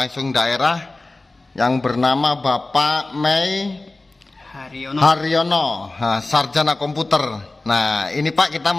daerah, yang bernama Bapak Mei Haryono, sarjana komputer. Nah, ini Pak, kita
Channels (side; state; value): right; quieter; 3.1 dB